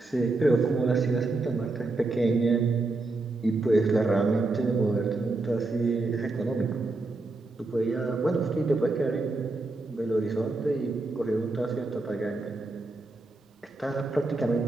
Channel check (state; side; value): quieter; left; 3.2 dB